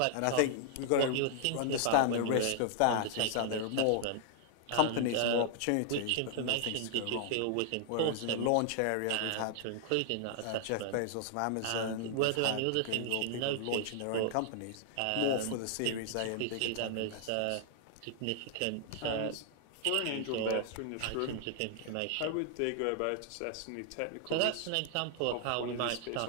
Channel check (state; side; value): different; both; correlation -0.01